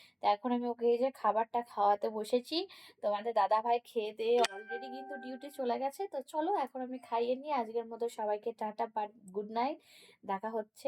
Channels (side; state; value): both; identical; correlation 1.00